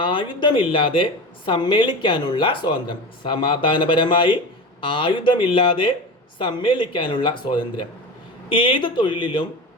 സമ്മേളിക്കാനുള്ള സ്വാതന്ത്ര്യം. സമാധാനപരമായി ആയുധമില്ലാതെ സമ്മേളിക്കാനുള്ള സ്വാതന്ത്ര്യം. ഏത് തൊഴിലിലും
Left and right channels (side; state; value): both; normal; correlation 0.28